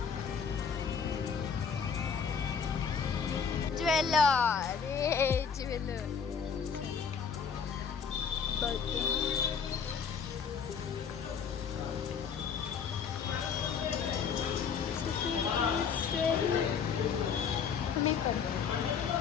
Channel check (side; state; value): right; quieter; 6.5 dB